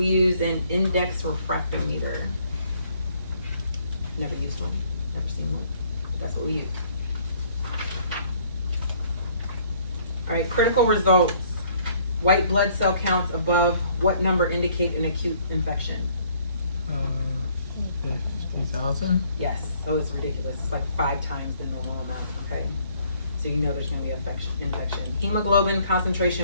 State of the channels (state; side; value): inverted; both; correlation -0.62